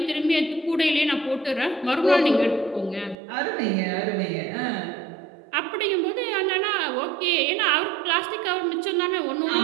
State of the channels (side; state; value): left; drops out; at 3.2 s